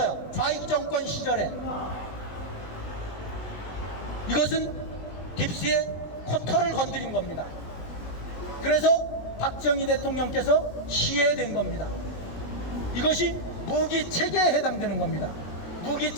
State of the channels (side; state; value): right; late; 20 ms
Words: 좌익 정권 시절에. 이것은 딥스의 코터를 건드린 겁니다. 그래서 박정희 대통령께서 시해된 겁니다. 이것이 무기체계에 해당되는 겁니다.